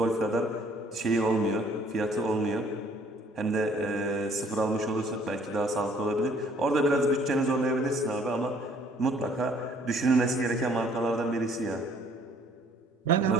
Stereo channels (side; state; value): both; normal; correlation 0.60